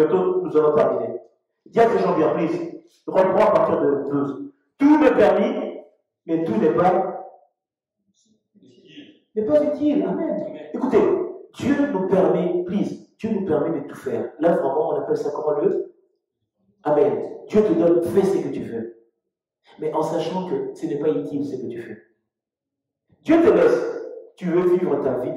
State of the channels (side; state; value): both; identical; correlation 1.00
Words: nous allons terminer. Dis à tes gens bien, please. Reprends à partir de 12. Tout m'est permis, mais tout n'est pas utile. Amen. Écoutez, Dieu nous permet, please, Dieu nous permet de tout faire. Là, vraiment, on appelle ça comment le? Amen. Dieu te donne, fais ce que tu veux. Mais en sachant que ce n'est pas utile ce que tu fais. Dieu te laisse. Tu veux vivre ta vie